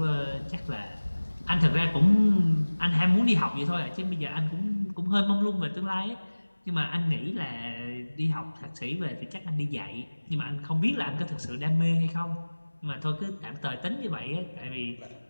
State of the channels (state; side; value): inverted; both; correlation -1.00